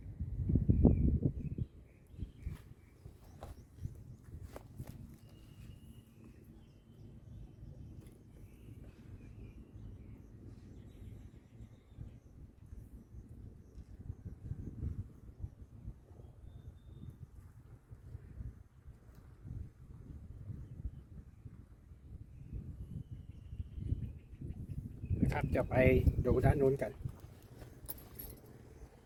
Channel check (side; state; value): both; identical; correlation 1.00